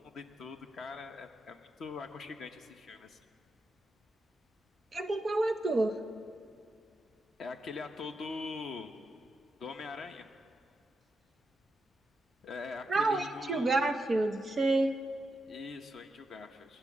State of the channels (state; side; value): normal; both; correlation 0.86